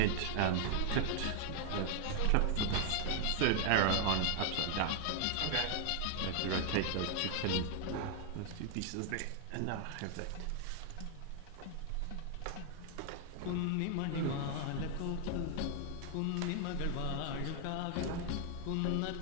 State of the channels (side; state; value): both; different; correlation 0.00